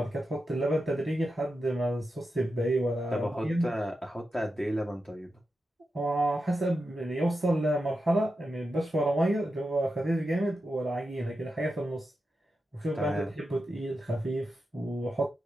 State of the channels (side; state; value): both; normal; correlation 0.89